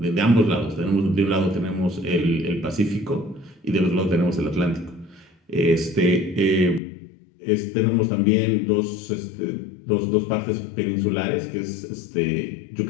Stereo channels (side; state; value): right; drops out; at 6.8 s